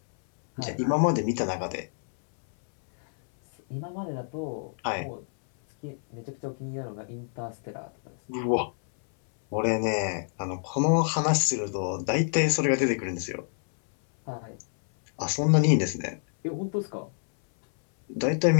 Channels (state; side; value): silent; right; 60 dB below the other